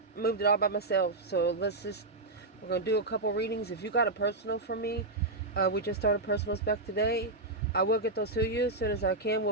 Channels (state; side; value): quieter; left; 3.0 dB